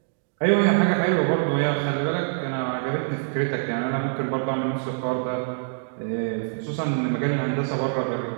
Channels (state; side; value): silent; left; digital silence